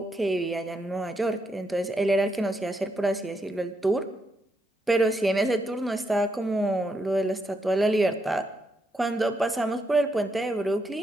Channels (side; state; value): both; normal; correlation 0.80